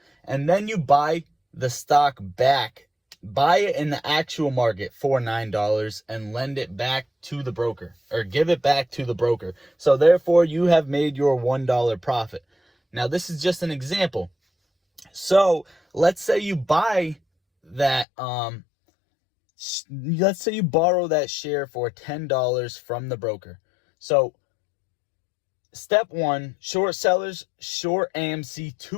and then you buy the stock back, buy it in the actual market for $9 and lend it back to the broker or give it back to the broker. So therefore you have made your $1 profit. Now this is just an example. So let's say you buy that, let's say you borrow that share for $10 from the broker. So step one, short sellers short AMC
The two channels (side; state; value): right; drops out; at 18.1 s